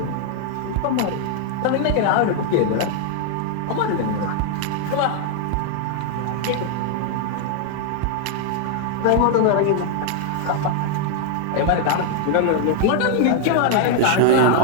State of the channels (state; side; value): different; both; correlation 0.00